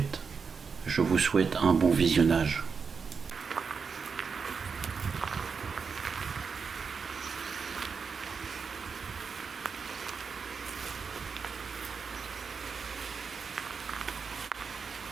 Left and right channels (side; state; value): left; quieter; 5.6 dB